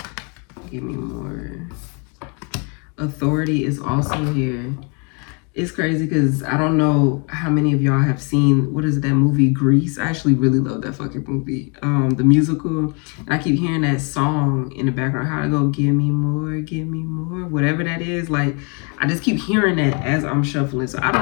Give me more. Authority is also here. It's crazy because I don't know how many of y'all have seen, what is it, that movie Grease? I actually really love that fucking movie, the musical. And I keep hearing that song in the background, how to go, give me more, whatever that is. Like, I just keep hearing that as I'm shuffling. So I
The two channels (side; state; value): right; quieter; 34.9 dB